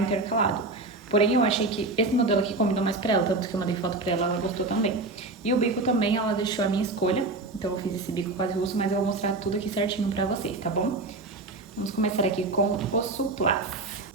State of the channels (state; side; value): quieter; left; 3.3 dB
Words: Porém, eu achei que esse modelo aqui combinou mais pra ela, tanto que eu mandei foto pra ela, ela gostou também. E o bico também, ela deixou a minha escolha. Então, eu fiz esse bico quase russo, mas eu vou mostrar tudo aqui certinho pra vocês, tá bom? Vamos começar aqui com o suplá.